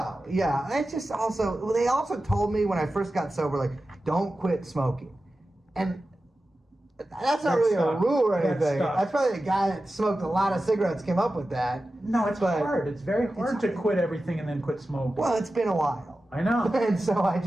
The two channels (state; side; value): normal; both; correlation 0.94